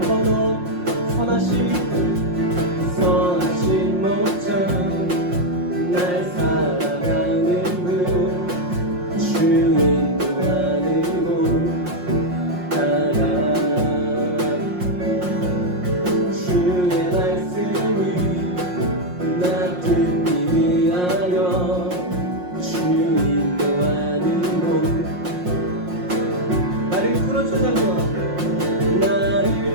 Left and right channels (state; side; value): late; left; 5.6 ms